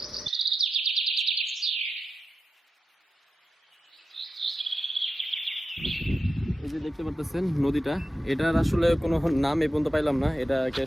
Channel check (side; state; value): both; normal; correlation 0.91